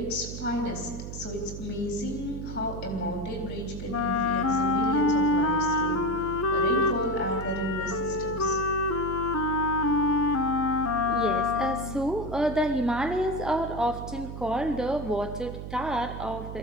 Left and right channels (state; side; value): noise; right; hum, 8 dB below the sound